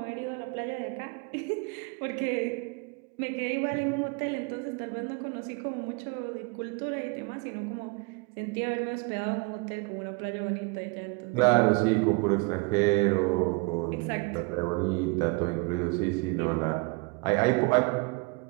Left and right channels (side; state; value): left; quieter; 29.5 dB